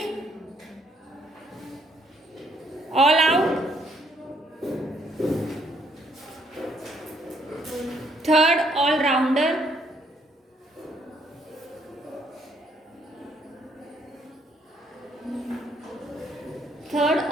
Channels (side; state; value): both; normal; correlation 0.69